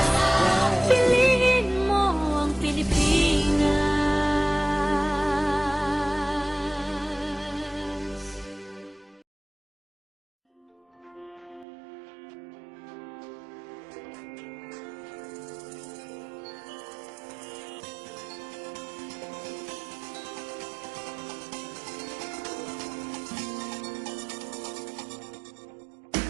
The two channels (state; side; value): drops out; left; at 11.7 s